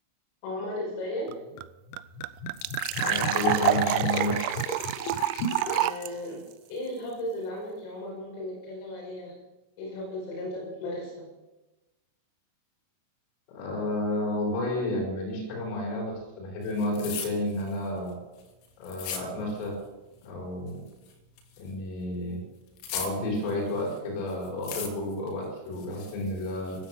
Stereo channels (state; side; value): late; right; 32 ms